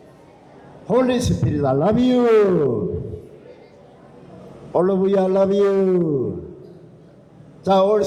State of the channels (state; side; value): identical; both; correlation 1.00